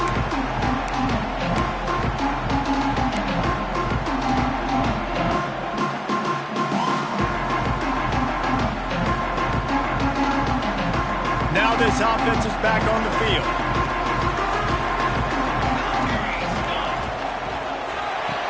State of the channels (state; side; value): identical; both; correlation 1.00